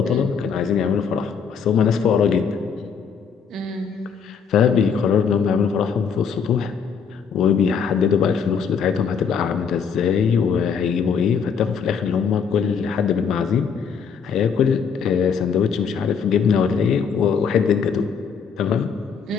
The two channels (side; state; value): right; quieter; 6.5 dB